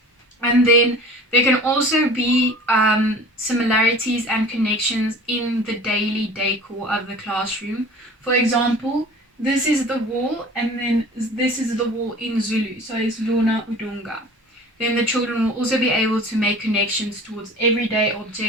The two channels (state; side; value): normal; both; correlation 0.42